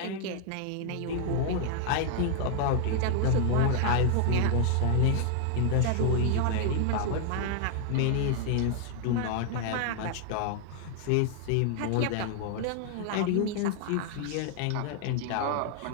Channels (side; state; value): both; different; correlation 0.00